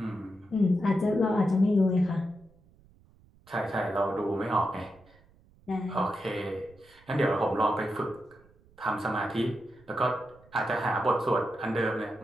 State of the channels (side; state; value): right; noise; rumble, 29 dB below the sound